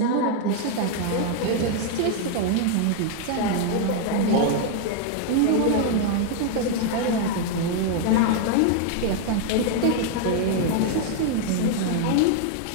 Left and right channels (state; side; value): different; both; correlation 0.00